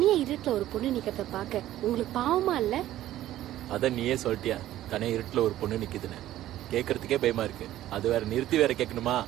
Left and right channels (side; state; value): left; quieter; 13.7 dB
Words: இருட்டுல ஒரு பொண்ணு நிக்கிறத பாக்க உங்களுக்கு பாவமா இல்ல? அத நீயே சொல்லிட்டியா, தனியா இருட்டுல ஒரு பொண்ணு நிக்குதுன்னு. கேக்குறதுக்கே பயமா இருக்கு, அது வேற நிறுத்தி வேற கேட்கணுமா?